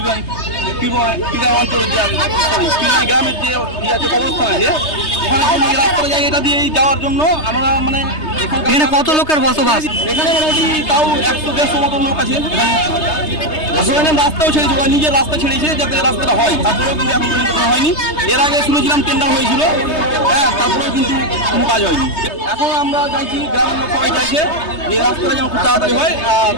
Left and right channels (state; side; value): late; right; 3.3 ms